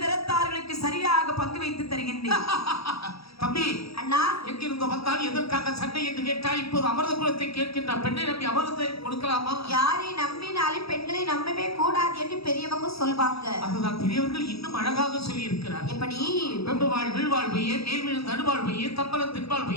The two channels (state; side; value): late; right; 0.77 ms